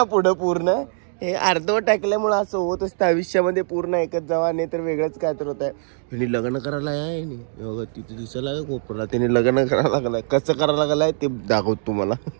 पुढं पूर्ण हे अर्धवट टाकल्यामुळे असं होत असतं आयुष्यामध्ये. पूर्ण ऐकत जावा, नाही तर वेगळंच काय तर होत आहे. ह्यानी लग्न करायला आहे तिथे दिसायला आहे कोपरला. त्याने लग्न करायला लागलाय. कसं करायला लागलाय ते दाखवतो तुम्हाला.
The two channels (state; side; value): silent; left; digital silence